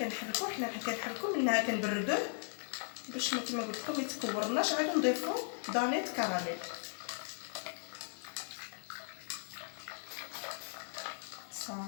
كنحركو منها كنبردوه باش ما كما قلت لكم يتكورناش. عاد نضيفو دانيت كراميل.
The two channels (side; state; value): right; silent; 53 dB below the other